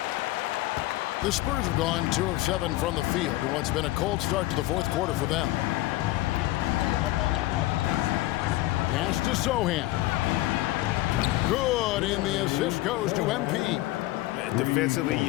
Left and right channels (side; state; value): right; quieter; 17.5 dB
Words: The Spurs have gone 2 of 7 from the field in what's been a cold start to the fourth quarter for them. Pass to Sohan. Good, and the assist goes to MP. Defensively,